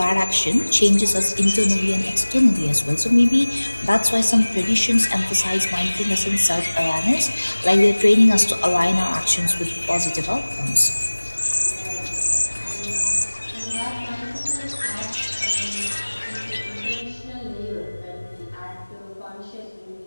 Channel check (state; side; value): inverted; both; correlation -1.00